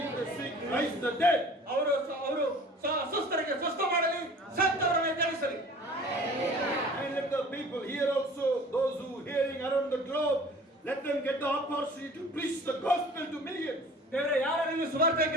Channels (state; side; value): normal; both; correlation 0.46